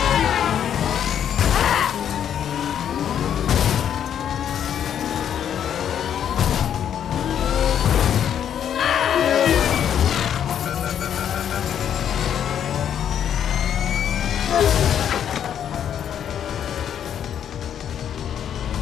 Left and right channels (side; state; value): right; quieter; 9.3 dB